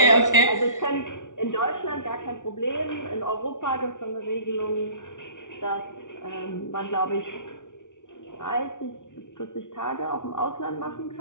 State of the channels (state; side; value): late; right; 0.87 ms